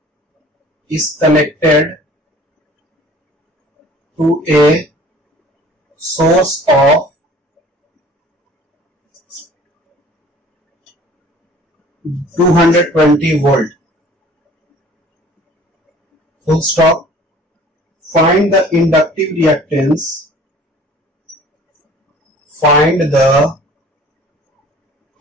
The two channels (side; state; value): both; normal; correlation 0.50